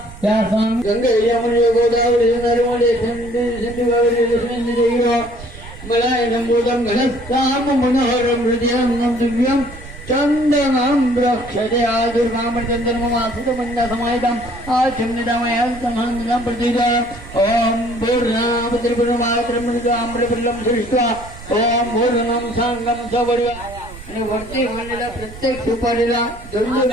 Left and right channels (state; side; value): noise; right; rumble, 16 dB below the sound